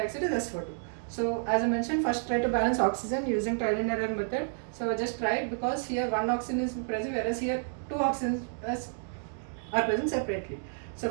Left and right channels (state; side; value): silent; left; digital silence